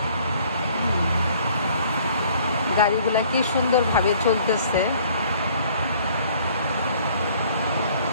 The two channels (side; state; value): both; inverted; correlation -0.57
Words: গাড়িগুলা কি সুন্দরভাবে চলতেছে,